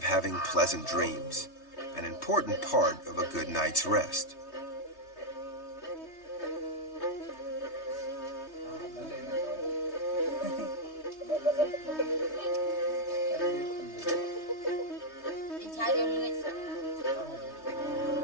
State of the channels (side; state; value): right; late; 3.2 ms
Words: having pleasant dreams, an important part of a good night's rest.